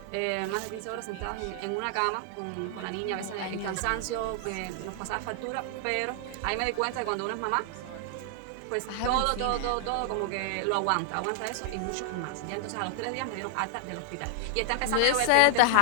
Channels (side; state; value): both; different; correlation 0.00